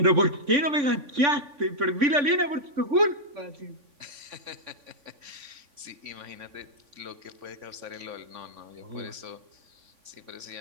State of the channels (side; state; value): left; late; 3.5 ms